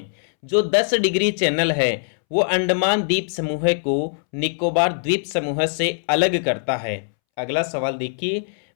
जो 10 डिग्री चैनल है वो अंडमान द्वीप समूह को निकोबार द्वीप समूह से अलग करता है। अगला सवाल देखिए,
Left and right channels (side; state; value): right; silent; 64 dB below the other